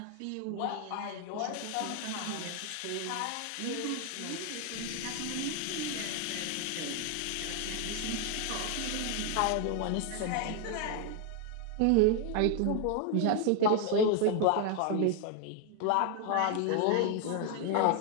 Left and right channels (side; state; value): both; different; correlation 0.01